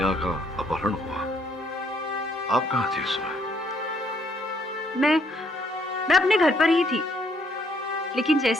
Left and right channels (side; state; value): both; normal; correlation 0.68